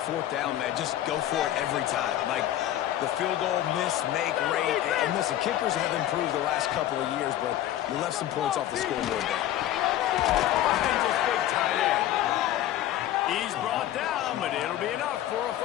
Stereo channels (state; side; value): quieter; right; 12.8 dB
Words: 4th down, man. Just go for it every time. Like the field goal miss, make rate. And listen, kickers have improved the last couple of years, but you left some points off the scoreboard there. Finds his big tight end. He's brought down, but it'll be enough for a